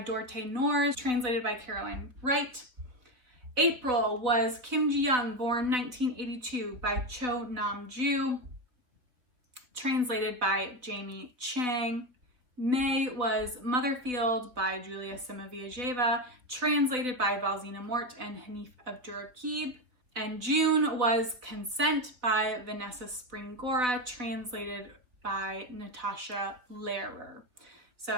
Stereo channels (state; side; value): late; left; 3.8 ms